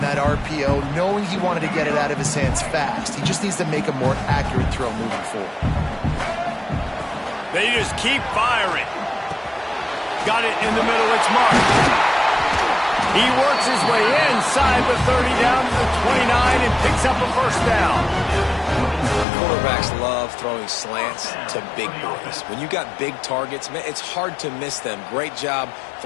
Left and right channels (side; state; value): right; drops out; at 19.2 s